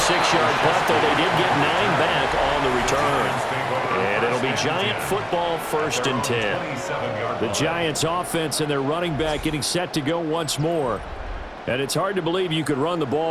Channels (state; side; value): identical; both; correlation 1.00